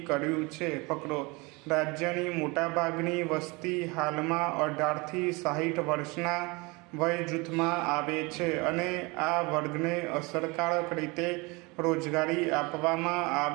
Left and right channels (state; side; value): quieter; left; 26.2 dB